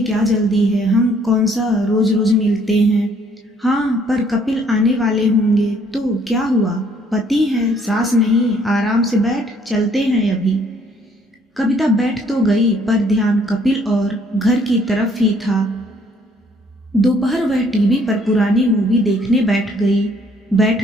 क्या जल्दी है? हम कौन सा रोज रोज मिलते हैं। हाँ, पर कपिल आने वाले होंगे तो क्या हुआ? पति है, सास नहीं। आराम से बैठ, चलते हैं अभी। कविता बैठ तो गई, पर ध्यान कपिल और घर की तरफ ही था। दोपहर वह टीवी पर पुरानी मूवी देखने बैठ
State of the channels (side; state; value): both; normal; correlation 0.64